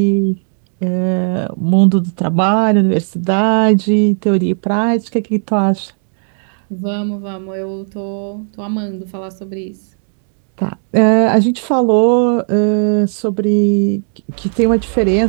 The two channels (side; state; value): left; silent; 67 dB below the other